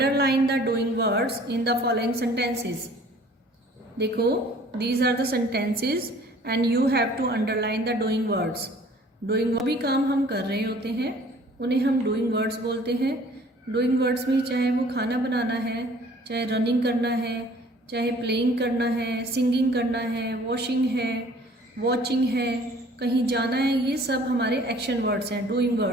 the doing words in the following sentences. देखो, these are the sentences and you have to underline the doing words. Doing भी काम हम कर रहे होते हैं, उन्हें हम डूइंग वर्ड्स बोलते हैं। डूइंग वर्ड्स में चाहे वो खाना बनाना है, चाहे रनिंग करना है, चाहे प्लेइंग करना है, सिंगिंग करना है, वॉशिंग है, वॉचिंग है, कहीं जाना है, ये सब हमारे एक्शन वर्ड्स हैं, डूइंग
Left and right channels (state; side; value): normal; both; correlation 0.53